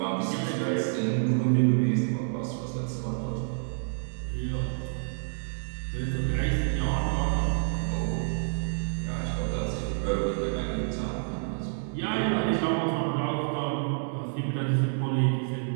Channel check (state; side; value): silent; left; digital silence